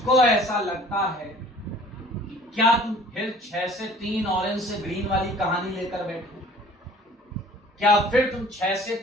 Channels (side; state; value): both; normal; correlation 0.50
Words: ऐसा लगता है कि क्या तुम फिर 6 से 3 ऑरेंज से ग्रीन वाली कहानी लेकर बैठो? क्या फिर तुम 6 से